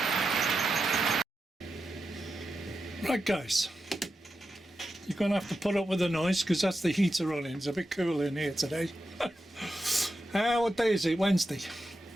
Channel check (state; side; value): normal; both; correlation 0.89